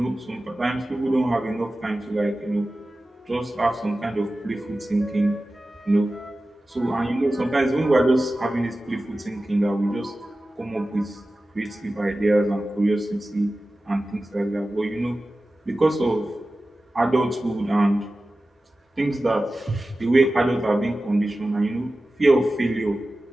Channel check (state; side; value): normal; both; correlation 0.95